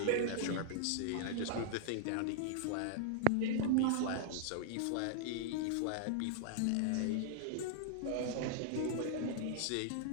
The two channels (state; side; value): different; both; correlation -0.01